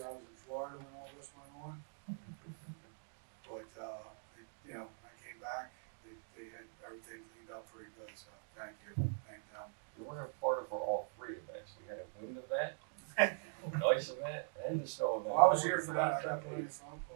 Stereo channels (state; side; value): silent; left; digital silence